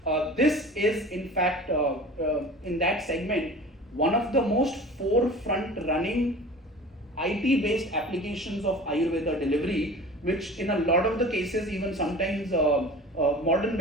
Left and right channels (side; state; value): both; normal; correlation 0.39